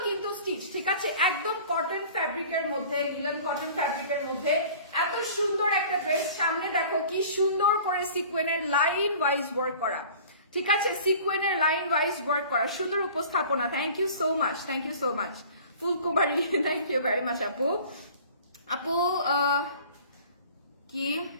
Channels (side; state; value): both; inverted; correlation -0.45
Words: কিন্তু স্টিচ, ঠিক আছে? একদম কটন ফ্যাব্রিকের মধ্যে, লিনেন কটন ফ্যাব্রিকের মধ্যে এত সুন্দর একটা ড্রেস। সামনে দেখো কি সুন্দর করে সিকোয়েনের লাইন ওয়াইজ ওয়ার্ক করা, ঠিক আছে? সিকোয়েনের লাইন ওয়াইজ ওয়ার্ক করা, সুন্দর উপস্থাপনা। Thank you so much, thank you so much Phulkumari, thank you very much আপু। আপু কি